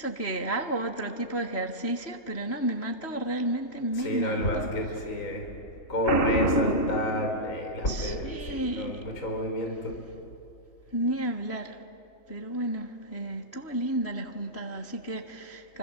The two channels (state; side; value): late; right; 3.1 ms